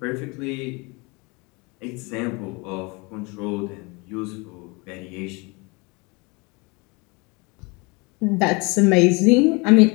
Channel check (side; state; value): right; quieter; 28.2 dB